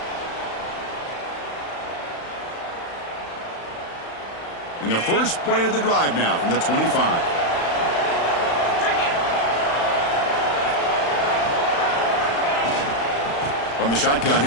And the first play of the drive now from the 25. From the shotgun,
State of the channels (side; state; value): right; late; 35 ms